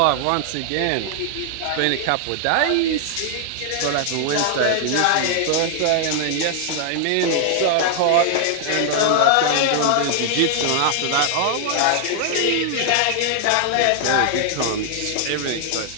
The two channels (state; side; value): different; both; correlation 0.00